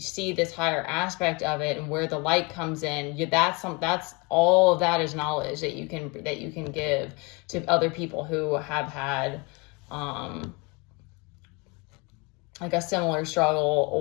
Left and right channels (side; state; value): right; quieter; 28.7 dB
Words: this higher aspect of it and where the light comes in, that's all of that is knowledge that you can give to other people who have had, like a similar struggle,